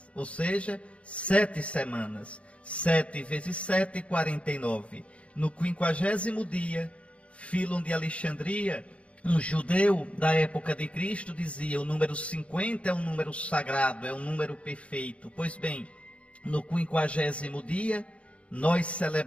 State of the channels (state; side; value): late; right; 0.062 ms